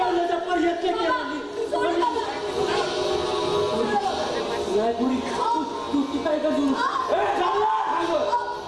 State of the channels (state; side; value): identical; both; correlation 1.00